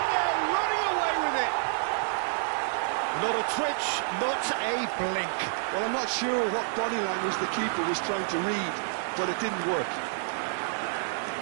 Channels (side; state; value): left; silent; digital silence